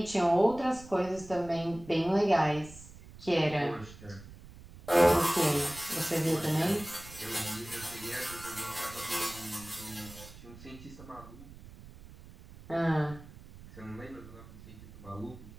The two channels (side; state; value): right; noise; rumble, 18 dB below the sound